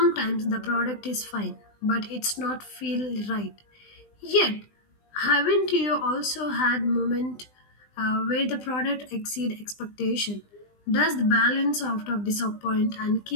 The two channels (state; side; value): late; right; 20 ms